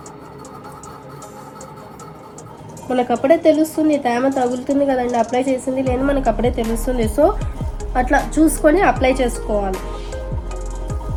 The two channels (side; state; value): both; identical; correlation 1.00